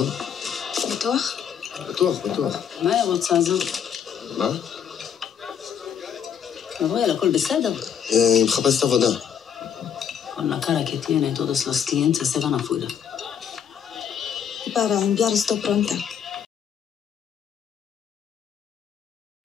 בטוח? בטוח, בטוח. מה היא רוצה הזאת? מה? גבריאל, הכל בסדר? היא מחפשת עבודה. Con la cara che tiene, todos los clientes se van afuera. Para enviar esto pronto.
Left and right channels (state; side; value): quieter; right; 8.1 dB